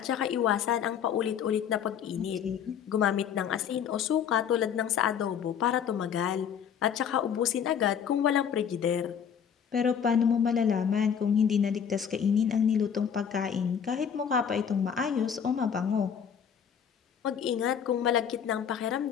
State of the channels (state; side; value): quieter; right; 7.9 dB